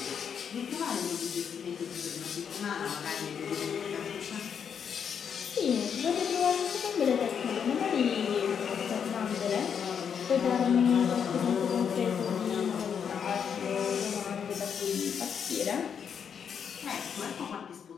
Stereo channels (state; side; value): quieter; right; 7.4 dB